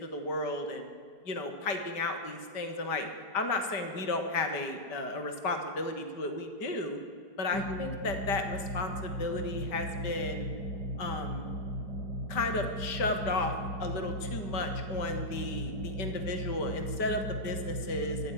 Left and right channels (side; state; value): right; late; 5.1 ms